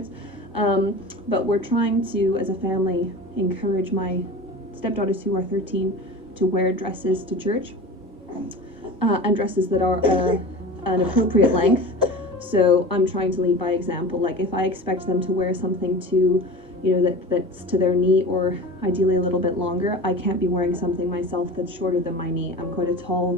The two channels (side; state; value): both; normal; correlation 0.34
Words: But we're trying to, as a family, encourage my stepdaughters who are 13 to wear dresses to church, and dresses that are an appropriate length. So I'm trying to lead by example. Like, if I expect them to wear something to, you know, that's to their knee, or ideally a little bit longer, I can't be wearing something myself that's shorter than my knee. I'm quite a tall